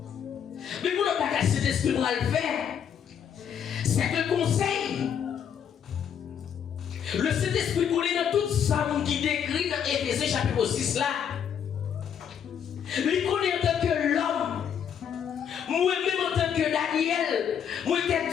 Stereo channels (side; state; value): right; quieter; 8.3 dB